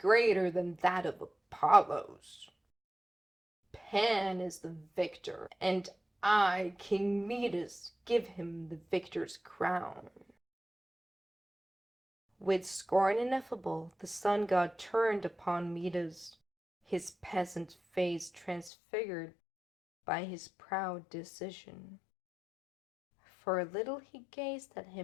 than that of Apollo's. Pan is the victor, and I, King Midas, give him the victor's crown." With scorn ineffable, the sun god turned upon Midas, his peasant face transfigured by his proud decision. For a little he gazed at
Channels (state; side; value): drops out; right; at 18.7 s